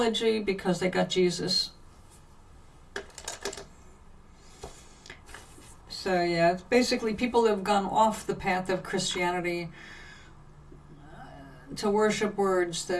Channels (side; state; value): both; identical; correlation 1.00